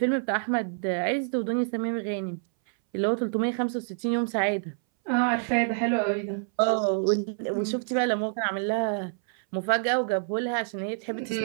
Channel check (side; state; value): left; silent; 60 dB below the other